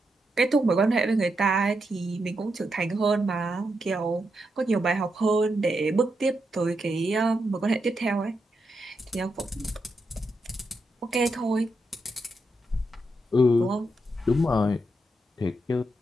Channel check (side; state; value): both; normal; correlation 0.83